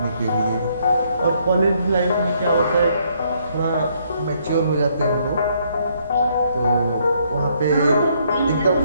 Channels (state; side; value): inverted; both; correlation -0.70